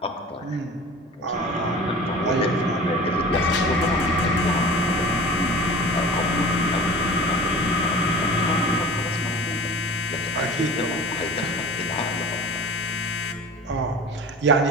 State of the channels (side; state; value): both; normal; correlation 0.39